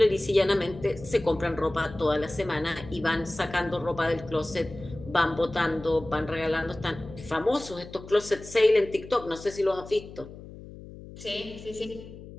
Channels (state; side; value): noise; left; hum, 15 dB below the sound